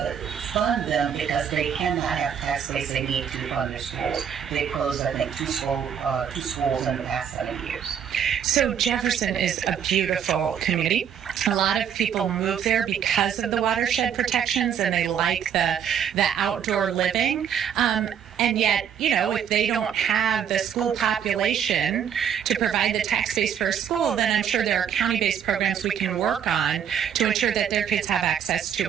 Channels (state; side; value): quieter; left; 8.5 dB